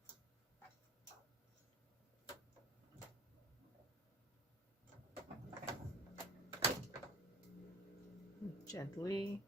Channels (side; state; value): both; normal; correlation 0.43